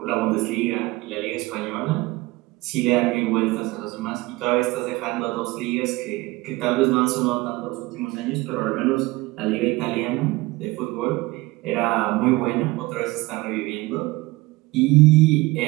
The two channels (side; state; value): left; quieter; 21.1 dB